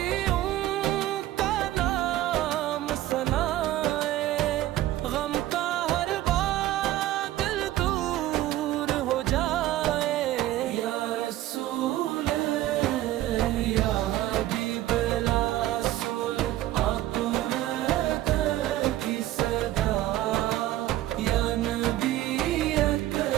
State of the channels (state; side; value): quieter; left; 14.7 dB